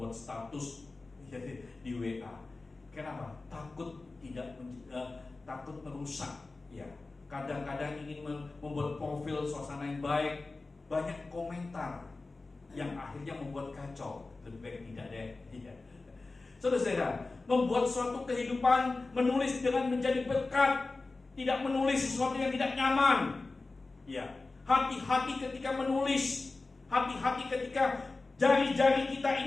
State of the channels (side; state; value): right; quieter; 3.5 dB